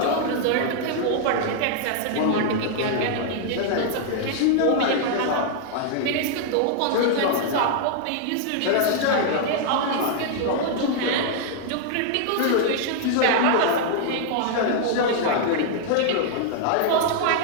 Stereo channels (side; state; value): both; different; correlation 0.00